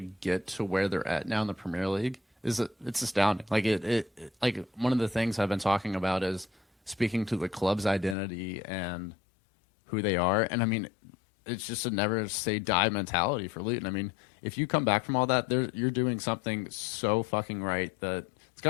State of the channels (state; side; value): drops out; right; at 8.2 s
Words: to where they're at now in the Premier League it's astounding. Like, like, one of the things I've been talking about is speaking to the club's identity and who they are. And, I mean, it's just a never say die mentality for Luton. I mean, if you come back from all that, you're doing something so fucking right that it's